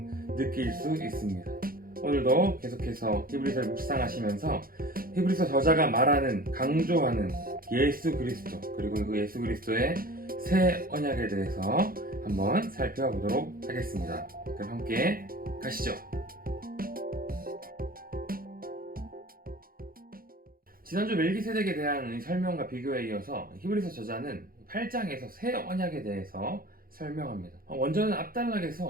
느낄 수 있습니다. 오늘도 계속해서 히브리서를 묵상하시면서 히브리서 저자가 말하는, 강조하는 예수 그리스도, 그리고 그 예수 그리스도의 새 언약에 대해서 한번 살펴보도록 하겠습니다. 그럼 함께 가시죠. 지난주 멜기세덱에 대한 설명과 비교에 이어서 히브리서 저자는 8장에서 새 언약에 대해서 설명합니다. 원저는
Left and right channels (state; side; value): late; left; 0.42 ms